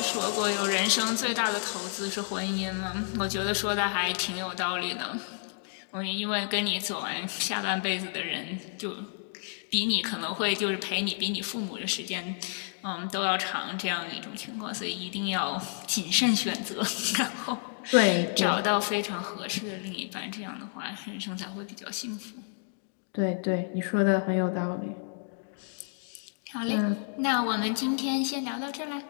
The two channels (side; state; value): right; silent; digital silence